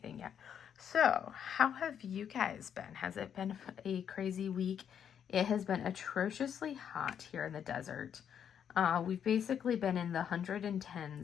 yet. So how have you guys been? Has it been a crazy week? It has been atrociously hot here in the desert. We've basically been in the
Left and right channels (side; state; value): right; quieter; 8.5 dB